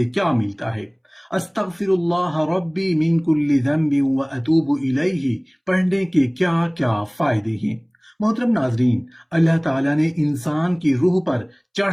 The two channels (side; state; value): both; identical; correlation 1.00